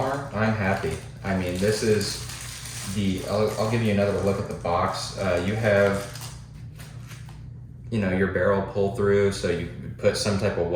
I'm happy. I mean, this is I'll give you another look at the box. You have, your barrel pull through, so you put some type of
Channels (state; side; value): identical; both; correlation 1.00